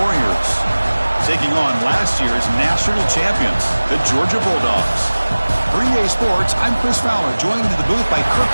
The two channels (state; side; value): inverted; both; correlation -1.00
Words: Warriors, taking on last year's national champions, the Georgia Bulldogs. For EA Sports, I'm Chris Fowler, joined in the booth by Kirk